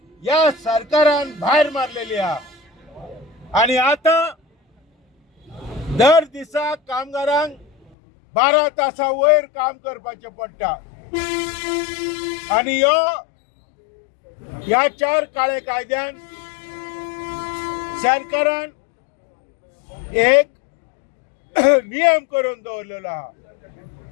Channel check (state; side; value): drops out; right; at 7.9 s